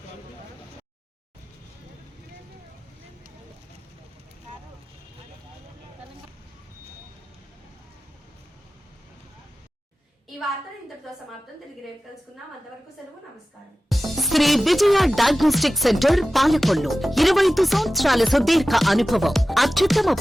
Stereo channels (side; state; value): both; normal; correlation 0.95